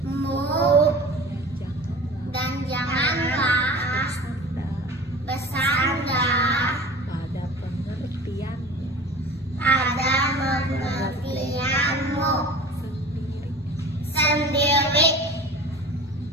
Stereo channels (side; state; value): both; normal; correlation 0.39